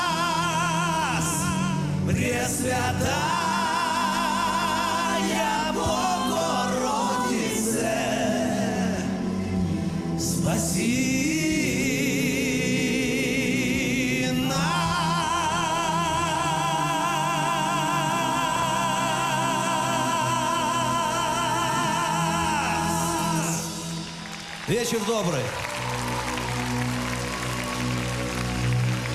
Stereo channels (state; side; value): identical; both; correlation 1.00